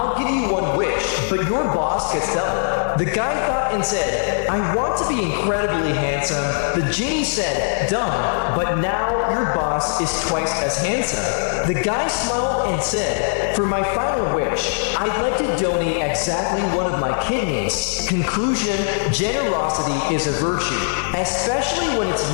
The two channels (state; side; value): silent; right; 65 dB below the other